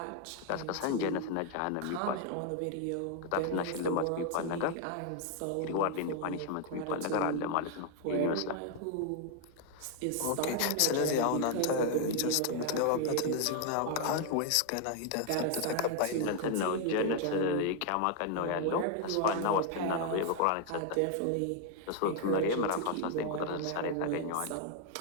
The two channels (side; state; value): both; different; correlation 0.00